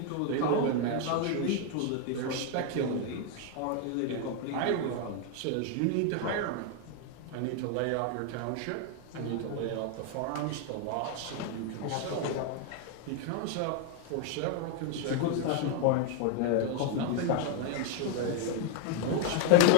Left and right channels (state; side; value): different; both; correlation 0.01